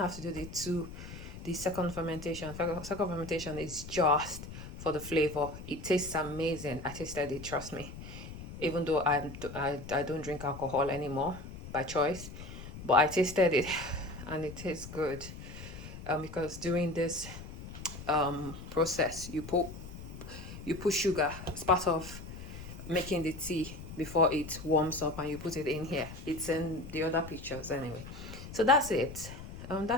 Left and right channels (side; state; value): left; noise; rumble, 12 dB below the sound